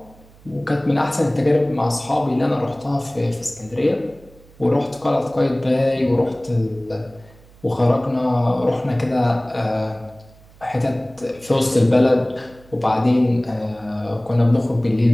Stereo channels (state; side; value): noise; right; hum, 26 dB below the sound